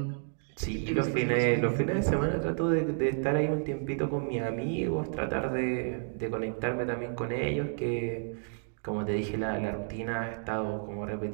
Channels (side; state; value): left; silent; digital silence